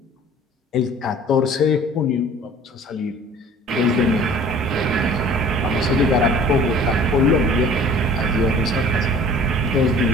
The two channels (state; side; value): normal; both; correlation 0.49